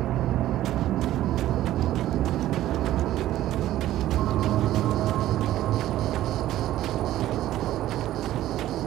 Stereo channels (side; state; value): left; quieter; 13.9 dB